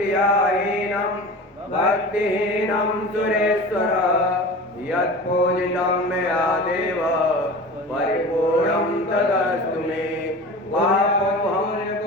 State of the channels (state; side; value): normal; both; correlation 0.35